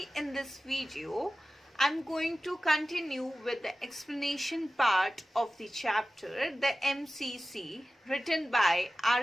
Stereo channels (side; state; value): both; normal; correlation 0.95